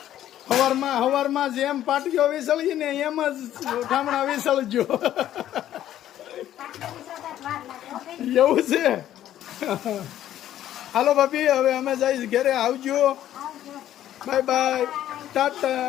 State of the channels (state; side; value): quieter; right; 12.1 dB